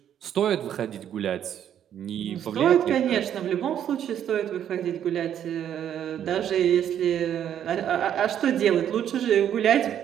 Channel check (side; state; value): left; quieter; 9.9 dB